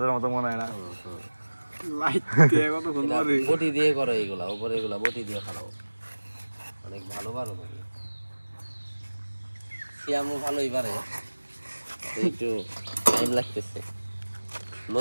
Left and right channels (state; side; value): inverted; both; correlation -1.00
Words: মতো মনে হয় না বটি দিয়ে করো এইগুলা উপরে এগুলা বটি দিয়ে খালাও অনেক ভালো পারো তুমি সিয়ামও ভালোই পারে একটু টাইম লাগতেছে